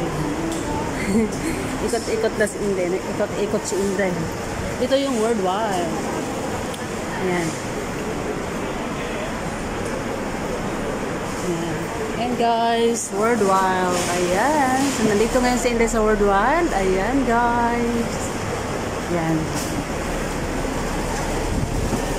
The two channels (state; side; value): identical; both; correlation 1.00